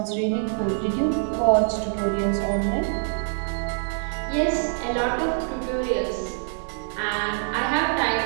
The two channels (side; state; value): left; silent; 62 dB below the other